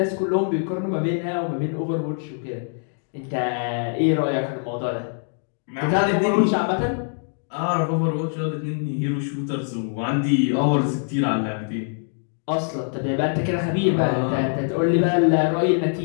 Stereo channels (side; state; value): right; silent; digital silence